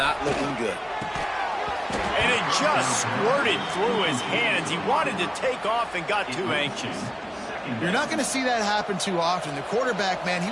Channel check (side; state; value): both; identical; correlation 1.00